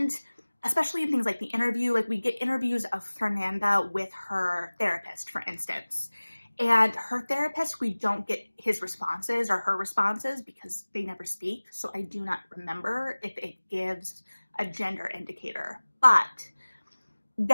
especially in things like the interview, like we get interviews of Fernanda with her therapist, for instance. And her therapist, we don't get his responses or her responses because they never speak. So I do not remember if it gives a gender indicator. But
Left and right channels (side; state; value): both; inverted; correlation -1.00